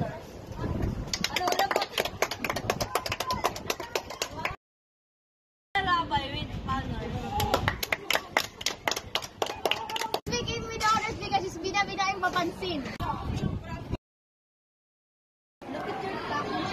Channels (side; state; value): both; identical; correlation 1.00